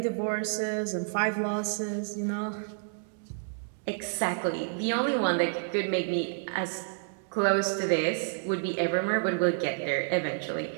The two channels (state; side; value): silent; left; digital silence